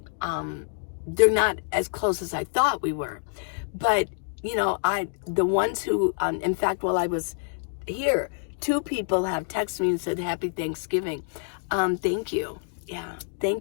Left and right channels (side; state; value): right; silent; digital silence